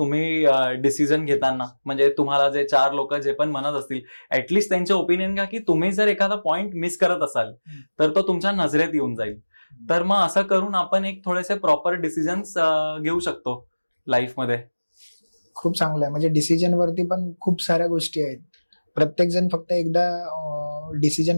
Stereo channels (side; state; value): both; inverted; correlation -1.00